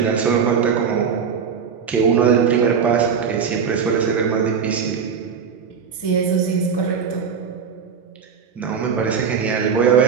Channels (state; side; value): quieter; left; 6.6 dB